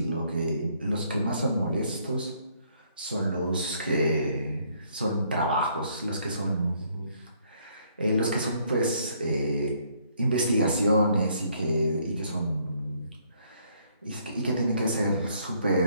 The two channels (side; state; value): both; inverted; correlation -0.67